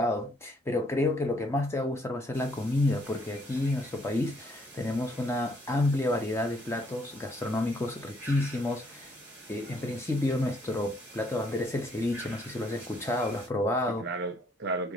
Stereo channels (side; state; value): both; normal; correlation 0.67